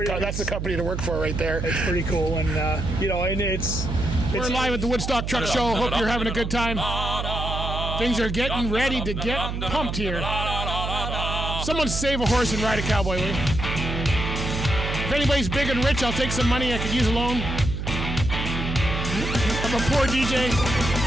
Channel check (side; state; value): right; noise; hum, 4 dB below the sound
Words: the company to work for right there. It's pretty cool, and and it's. We're live at the Woodstock Truck Show. Hope you're having a good time. Things are getting ready to get pumped here. Someone save a horse and ride a cowboy, will you? If anybody's big and rich, I'll take some money. I could use a loan. I'm a poor DJ.